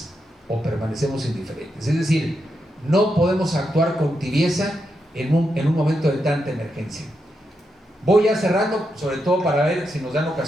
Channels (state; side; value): normal; both; correlation 0.84